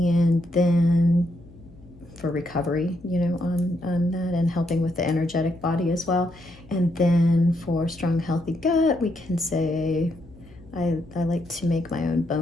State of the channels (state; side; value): noise; left; hum, 23 dB below the sound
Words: then for recovery, on that, and helping with the energetic body as well. And then for strong, healthy gut, we can say I like to make my own